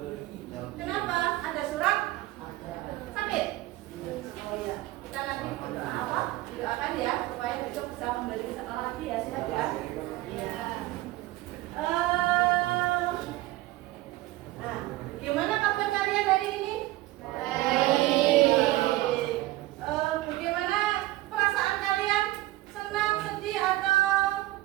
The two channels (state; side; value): quieter; left; 17.8 dB